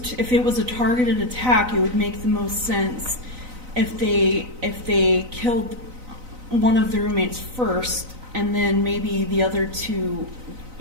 if it was a targeted attack, it would make the most sense if they killed one of the roommates first and then maybe the other two,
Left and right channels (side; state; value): left; late; 4.0 ms